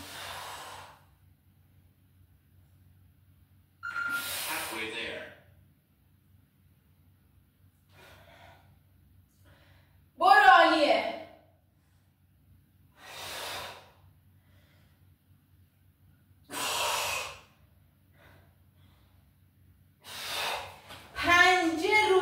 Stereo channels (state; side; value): identical; both; correlation 1.00